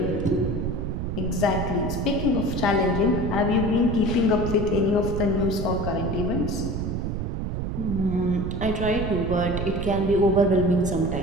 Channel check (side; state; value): right; noise; rumble, 3 dB below the sound